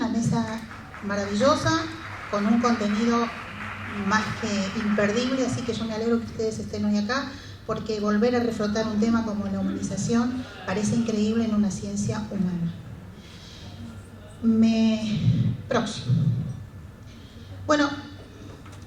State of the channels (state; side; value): identical; both; correlation 1.00